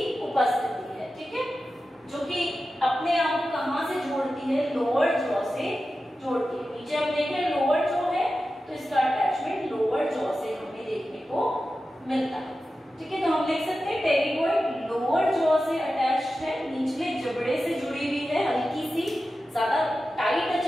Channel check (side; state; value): both; normal; correlation 0.93